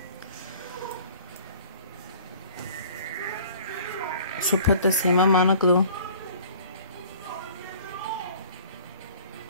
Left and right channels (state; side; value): inverted; both; correlation -0.49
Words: So put the same amount of glue.